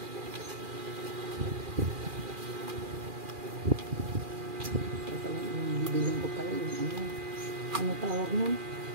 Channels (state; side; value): late; left; 2.4 ms